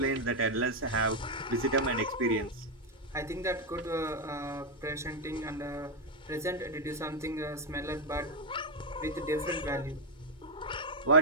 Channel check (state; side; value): normal; both; correlation 0.02